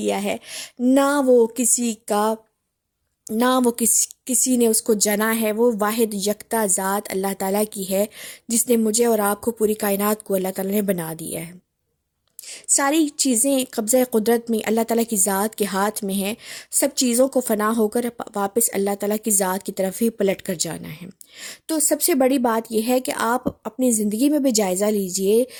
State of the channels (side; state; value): both; identical; correlation 1.00